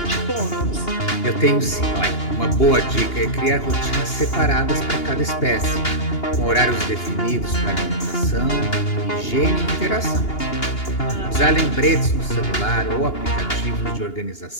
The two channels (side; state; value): right; late; 2.8 ms